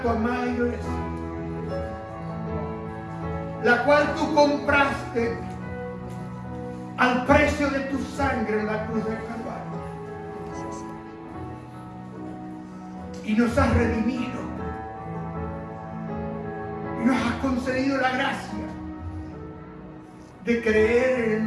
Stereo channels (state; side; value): identical; both; correlation 1.00